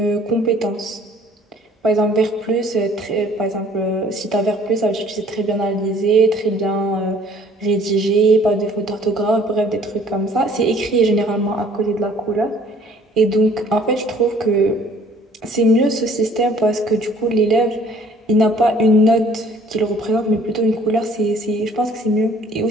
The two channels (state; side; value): normal; both; correlation 0.56